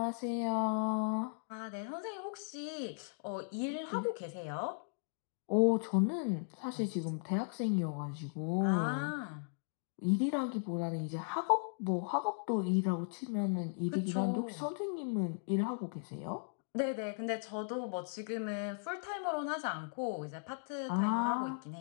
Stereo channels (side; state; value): right; silent; digital silence